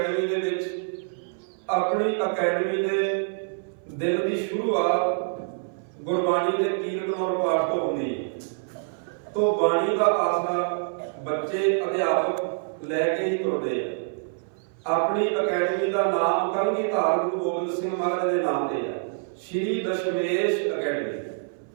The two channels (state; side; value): silent; left; 58 dB below the other